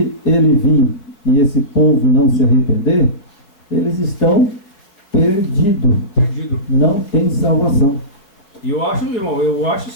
ele vir e esse povo não se arrepender, eles estão perdidos. Não tem salvação. E eu acho, irmão,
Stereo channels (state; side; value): late; right; 5.0 ms